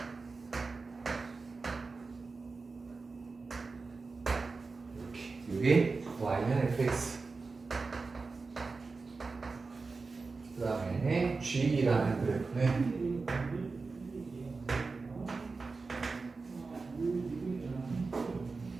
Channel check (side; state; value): left; quieter; 4.1 dB